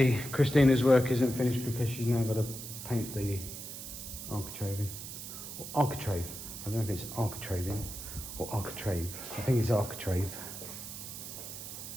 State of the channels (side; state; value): right; noise; hiss, 9 dB below the sound